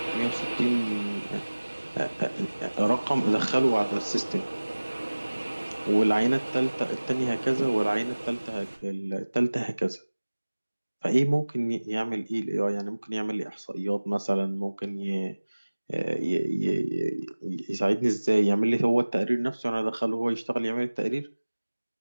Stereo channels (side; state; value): both; inverted; correlation -1.00